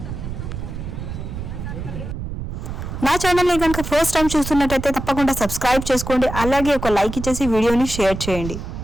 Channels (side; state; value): right; noise; rumble, 7 dB below the sound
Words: నా ఛానల్ని కనుక ఫస్ట్ టైం చూస్తున్నట్టయితే తప్పకుండా సబ్స్క్రైబ్ చేసుకోండి, అలాగే ఒక లైక్ ఇచ్చేసి వీడియోని షేర్ చేయండి.